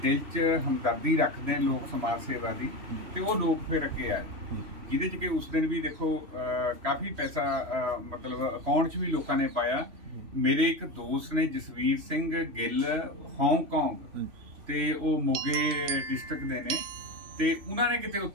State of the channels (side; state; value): left; late; 3.1 ms